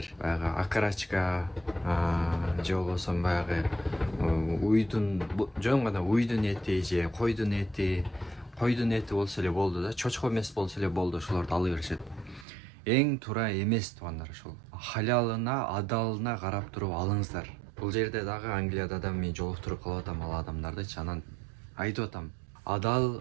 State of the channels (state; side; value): drops out; left; at 12.5 s